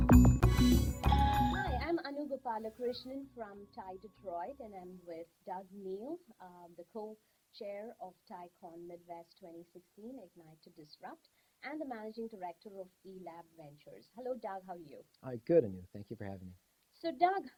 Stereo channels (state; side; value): identical; both; correlation 1.00